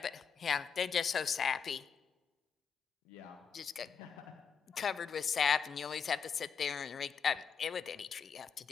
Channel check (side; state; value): right; quieter; 6.6 dB